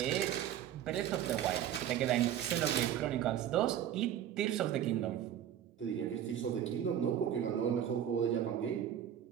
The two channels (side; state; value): left; quieter; 10.3 dB